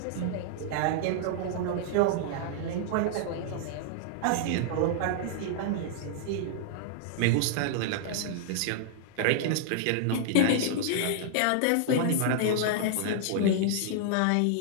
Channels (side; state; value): both; different; correlation -0.01